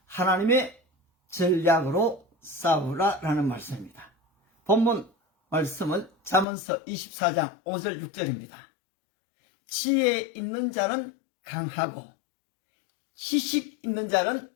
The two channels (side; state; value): right; drops out; at 6.5 s